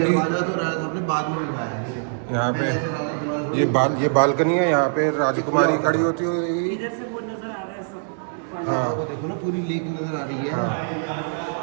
दरवाजा तो राजा साहब ने बाद में बनवाया है। यहाँ पे ये बालकनी है। यहाँ पे राजकुमारी खड़ी होती होगी। इधर से वो नजर आ रहा है सब। हाँ, वो देखो ना, पूरी लेक नजर आ रही है।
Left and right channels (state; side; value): silent; left; digital silence